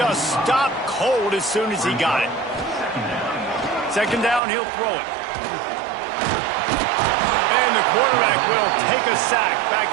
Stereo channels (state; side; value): drops out; left; at 4.4 s